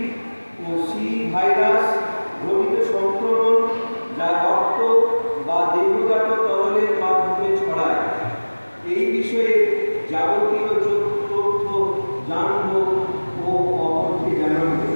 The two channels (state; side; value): inverted; both; correlation -1.00